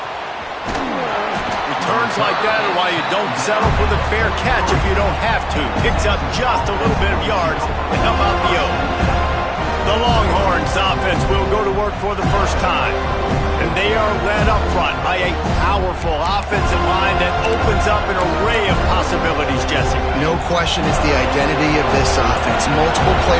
Returns like that are why you don't settle for the fair catch if you don't have to. Picks up just a little bit of yards to help out the Oak. The Longhorns offense will go to work for the first time. And they are led up front by a powerful offensive line that opens up an array of possibilities, Jesse. No question it's the identity of this offense. Multiple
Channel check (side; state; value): both; identical; correlation 1.00